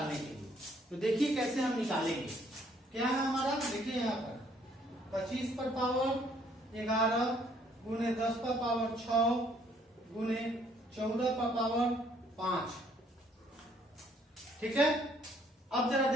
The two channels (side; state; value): both; normal; correlation 0.65